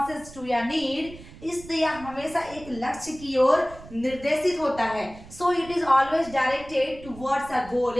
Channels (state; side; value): noise; right; rumble, 18 dB below the sound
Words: to your need, इसलिए यह हमेशा एक लक्ष्य की ओर निर्देशित होता है। So it is always directed towards a goal.